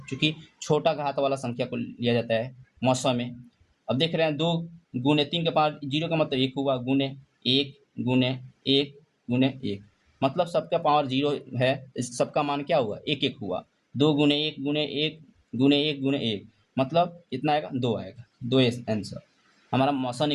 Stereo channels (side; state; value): both; identical; correlation 1.00